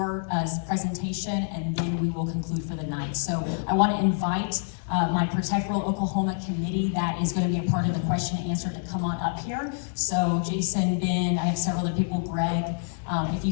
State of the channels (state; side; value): silent; right; 60 dB below the other